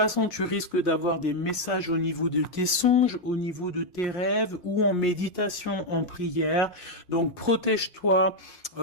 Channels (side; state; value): right; late; 5.6 ms